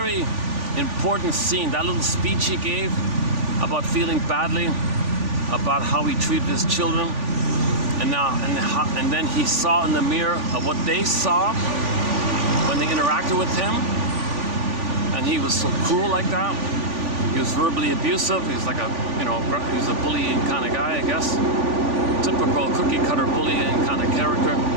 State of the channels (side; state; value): left; late; 3.5 ms